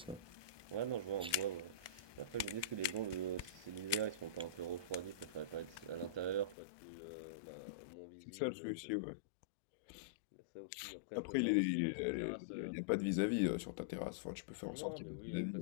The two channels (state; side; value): drops out; right; at 6.6 s